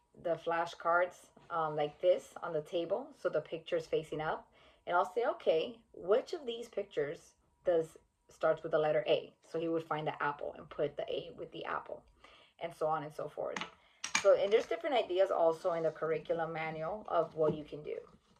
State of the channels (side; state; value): both; identical; correlation 1.00